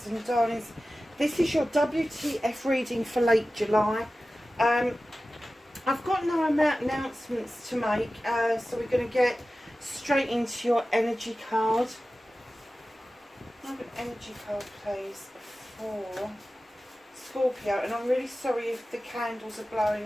and Darlings. This is your WTF reading for late July. I've got no announcements to make, so we're going to get straight into your energy card. I have an energy card, please, for Scorpio, and I'm really sorry if the candles are blowing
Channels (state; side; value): normal; both; correlation 0.95